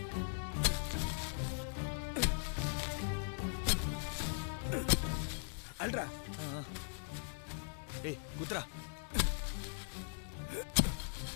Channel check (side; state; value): right; silent; digital silence